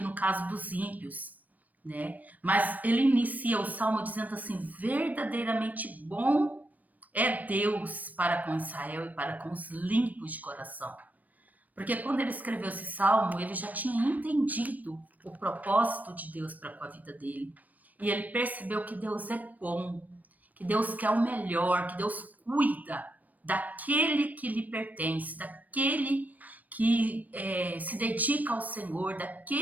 caso dos ímpios, né? Mas ele inicia o salmo dizendo assim: verdadeiramente bom é Deus para com Israel e para com os limpos de coração. Porque quando ele escreveu esse salmo, ele já tinha entendido o propósito de Deus para com a vida dele. E ele percebeu que Deus é bom, que Deus quer o melhor, que Deus cuida daquele que lhe pertence, daquele que se dedica ao Senhor,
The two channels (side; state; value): left; late; 0.078 ms